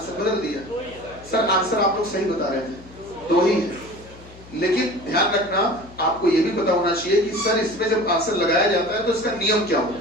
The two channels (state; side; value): noise; left; hum, 20 dB below the sound